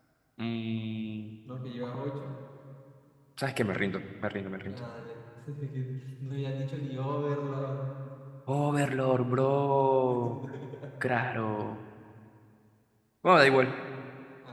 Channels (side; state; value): both; identical; correlation 1.00